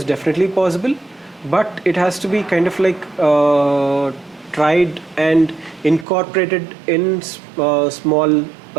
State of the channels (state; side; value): drops out; left; at 6.1 s